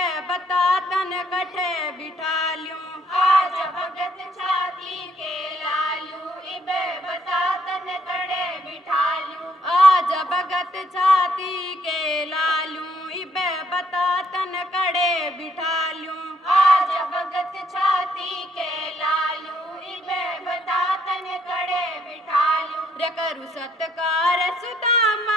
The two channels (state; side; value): normal; both; correlation 0.69